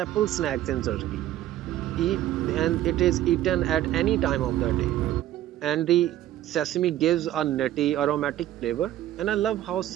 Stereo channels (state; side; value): quieter; left; 13.3 dB